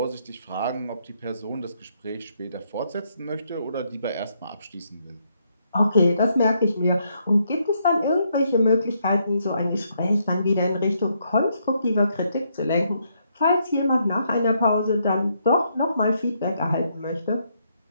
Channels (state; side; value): inverted; both; correlation -0.75